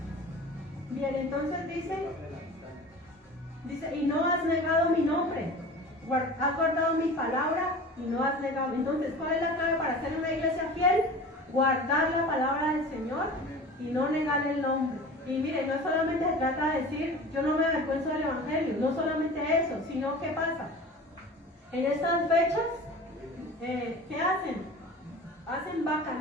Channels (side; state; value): both; normal; correlation 0.38